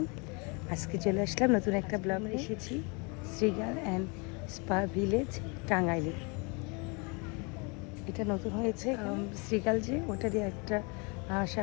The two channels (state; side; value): quieter; right; 31.5 dB